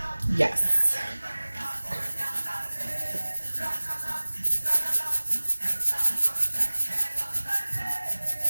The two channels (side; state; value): both; inverted; correlation -1.00